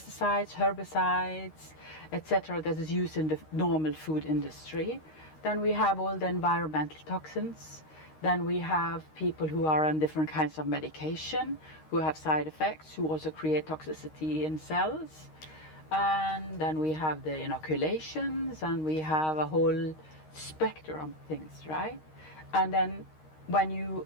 herbicides, etc. that is used in the normal food industry. Then we have all the environmental toxins. Then we have people who are on different kinds of medication, who have side effects, who also create toxicity in cells. And then we have the inoculations, and we have a whole spectrum of things, right? And then when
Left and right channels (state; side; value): late; right; 13 ms